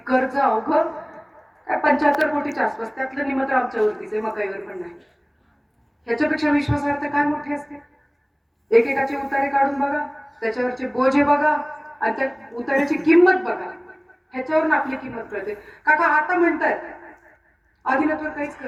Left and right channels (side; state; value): both; identical; correlation 1.00